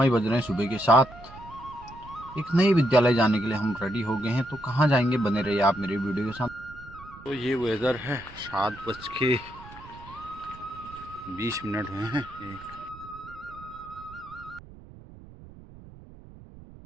बज रहे हैं सुबह के 7। एक नए विद्यालय जाने के लिए हम रेडी हो गए हैं। तो कहाँ जाएंगे, बने रहिए आप मेरे वीडियो के साथ। तो ये वेदर है, 7:20 हुए हैं।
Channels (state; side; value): noise; right; rumble, 19 dB below the sound